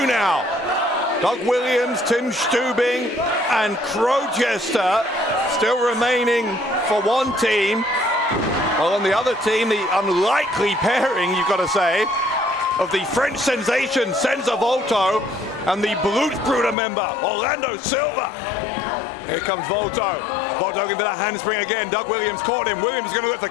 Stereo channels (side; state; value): right; drops out; at 16.8 s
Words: now. Doug Williams, Tim Stübing, and Crowchester still remaining for one team. While on the other team, the unlikely pairing, you've got to say, of the French sensation Senza Volto and the Blutsbrüder member Orlando Silva. Here comes Volto. Volto looking for that handspring again. Doug Williams caught him. Williams is going to go for